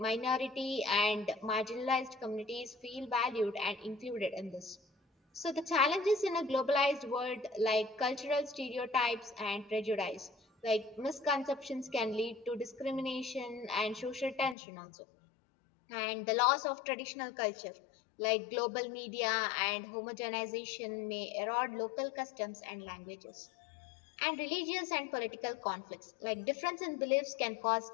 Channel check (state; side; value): drops out; right; at 14.6 s